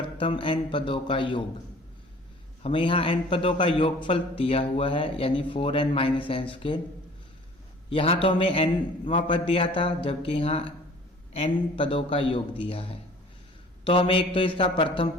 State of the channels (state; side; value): normal; both; correlation 0.49